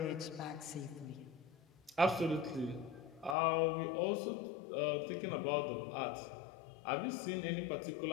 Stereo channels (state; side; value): drops out; right; at 3.4 s